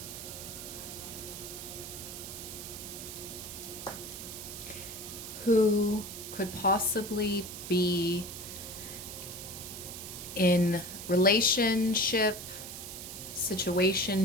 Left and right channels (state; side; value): noise; right; hiss, 9 dB below the sound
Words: who could possibly be in situationship